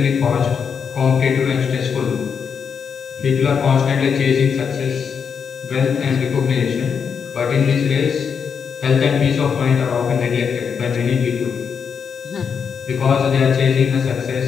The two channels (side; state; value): right; quieter; 6.6 dB